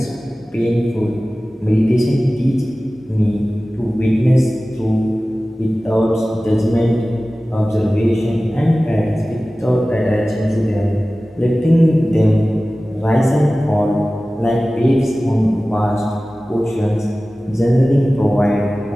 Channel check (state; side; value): normal; both; correlation 0.97